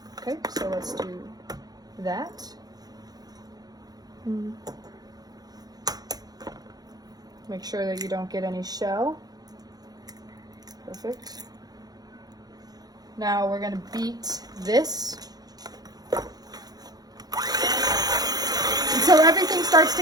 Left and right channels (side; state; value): left; late; 0.19 ms